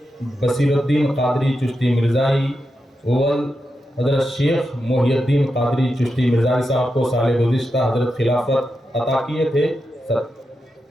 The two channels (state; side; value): normal; both; correlation 0.88